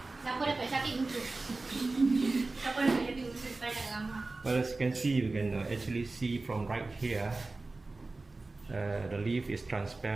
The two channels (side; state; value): left; quieter; 3.4 dB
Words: Well, as you can see, you can actually see from right here. The leaf is